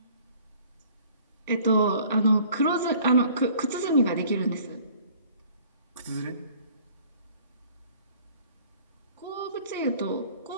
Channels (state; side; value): inverted; both; correlation -0.53